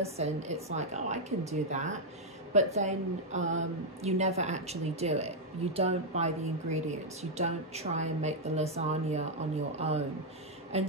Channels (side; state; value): both; normal; correlation -0.02